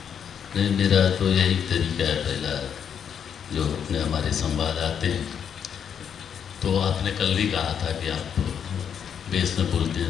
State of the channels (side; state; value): right; quieter; 8.0 dB